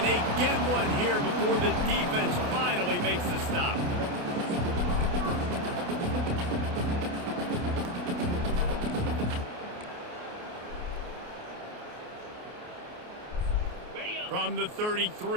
they get one here before the defense finally makes the stop. From the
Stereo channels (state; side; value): late; left; 28 ms